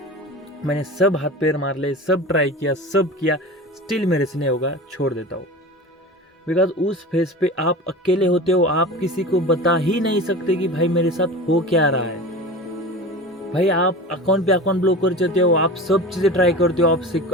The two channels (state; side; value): normal; both; correlation 0.32